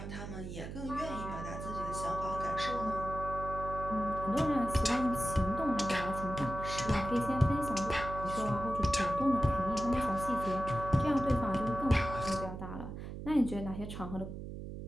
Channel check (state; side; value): noise; right; hum, 8 dB below the sound